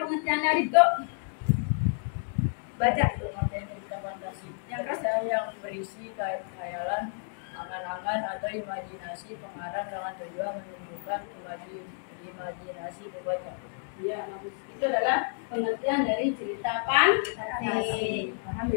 pengertiannya Riko. Baca. Pengertian cerita fantasi. Yang keras. Cerita yang berisi khayalan, angan-angan atau imajinasi pengarang dengan tujuan menunjukkan imajinasi pembaca. Iya, bagus. Itu adalah pengertian dari cerita fantasi. Paham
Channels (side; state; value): right; silent; 58 dB below the other